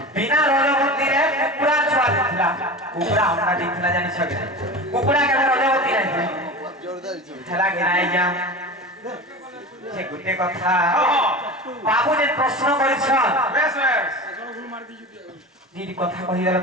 বিনা রজবতীরে কুকুড়া ছুয়া দিছিলা কুকুড়া অন্ডা দিছিলা জানিছ কি কুকুড়া কেন রজবতী নাই হেলা কি নাই আজ্ঞা যে গোটে কথা বাবু যে প্রশ্ন করেছন বেশ বেশ যদি কথা কহিদেলে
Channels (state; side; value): normal; both; correlation 0.30